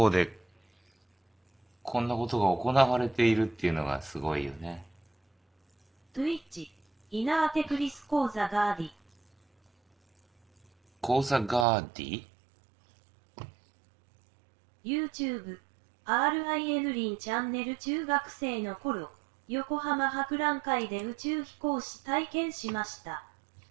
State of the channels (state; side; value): drops out; left; at 11.7 s